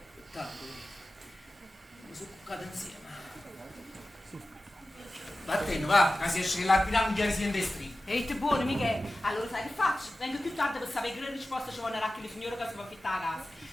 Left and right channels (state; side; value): normal; both; correlation 0.95